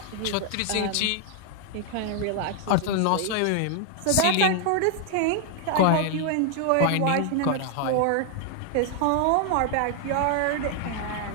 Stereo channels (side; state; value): both; different; correlation 0.00